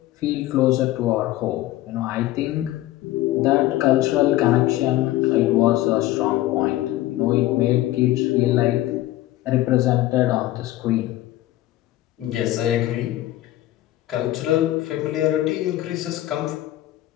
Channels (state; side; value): quieter; right; 15.5 dB